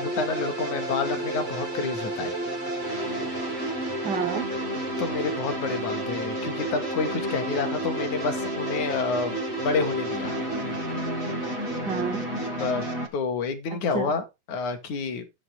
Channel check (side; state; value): right; late; 8.1 ms